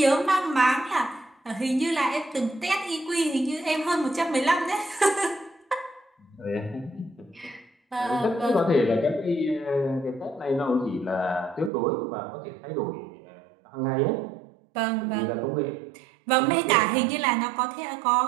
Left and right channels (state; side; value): drops out; left; at 11.7 s